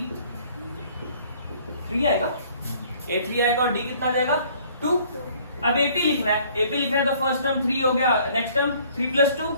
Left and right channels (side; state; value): both; inverted; correlation -0.57